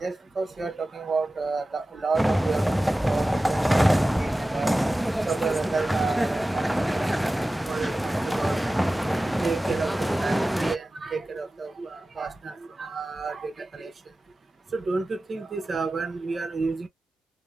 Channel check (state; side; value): normal; both; correlation 0.95